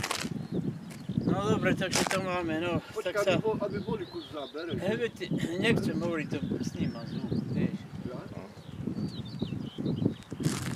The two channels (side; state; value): both; identical; correlation 1.00